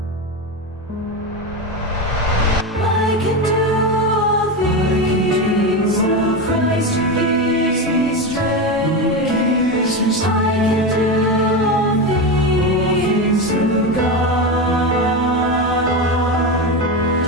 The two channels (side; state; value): both; normal; correlation 0.16